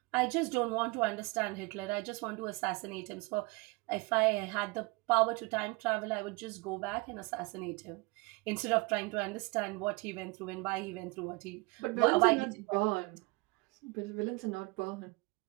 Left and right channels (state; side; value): quieter; left; 25.7 dB